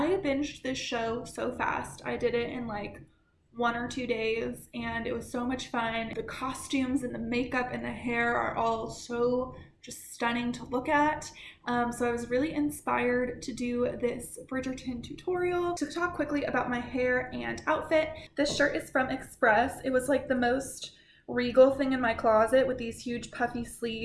binged this show so fast. I did it in like 1 or 2 days, and it was so much fun. The costumes and the makeup and the hair are all so just stunning to look at. So I was really inspired to do this Bridgerton tutorial. To talk quickly about my hair and outfit, this shirt is from Express. It was like the most regal thing in my closet with these huge puffy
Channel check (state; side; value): identical; both; correlation 1.00